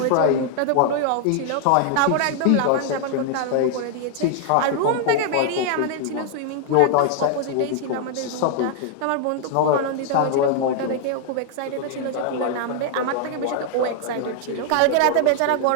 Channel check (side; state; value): both; different; correlation 0.00